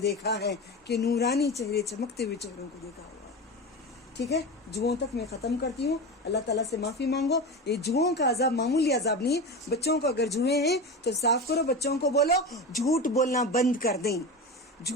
دیکھا ہے کہ نورانی چہرے, چمکتے ہوئے چہروں کو دیکھا ہوا ہے. ٹھیک ہے, جوؤں تک میں ختم کرتی ہوں. اللہ تعالیٰ سے معافی مانگو. یہ جوؤں کا عذاب معمولی عذاب نہیں. بچوں کو اگر جوئیں ہیں تو صاف کرو, بچوں کو بولو جھوٹ بولنا بند کر دیں,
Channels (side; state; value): both; normal; correlation 0.24